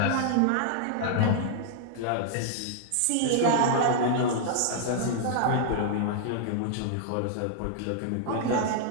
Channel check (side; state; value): both; different; correlation -0.01